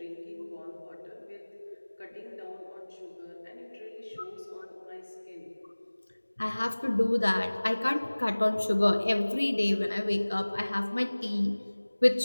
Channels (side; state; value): both; inverted; correlation -1.00